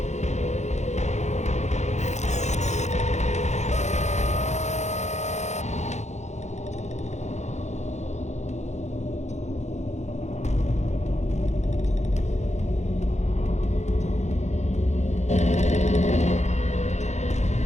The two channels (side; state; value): right; late; 0.33 ms